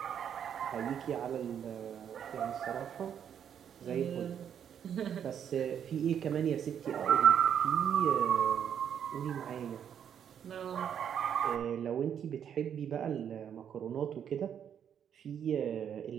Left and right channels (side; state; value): left; quieter; 8.7 dB